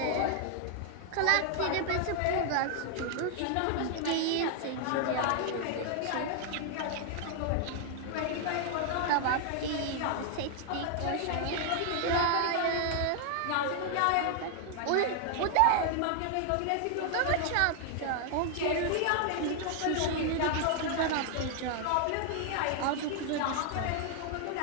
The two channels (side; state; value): both; different; correlation 0.00